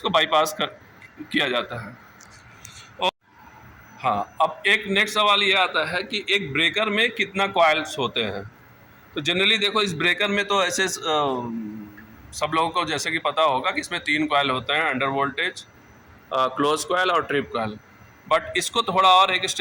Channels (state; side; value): identical; both; correlation 1.00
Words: बाईपास किया जाता है। और हाँ, अब एक नेक्स्ट सवाल ये आता है कि एक ब्रेकर में कितना कॉइल्स होते हैं। तो जनरली देखो इस ब्रेकर में तो ऐसे सब लोगों को जैसे कि पता होगा कि इसमें 3 कॉइल होते हैं, अंडर वोल्टेज, क्लोज कॉइल और ट्रिप कॉइल। बट इसको थोड़ा और एक